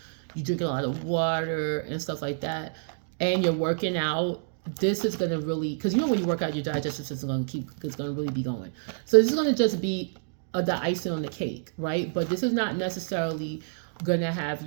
you drinking a lot of water and stuff like that, and you're working out, this is going to really, because when you work out, your digestive system is going to really be going. So this is going to just be the icing on the cake, right? But this is not necessarily going to have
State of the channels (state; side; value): silent; left; digital silence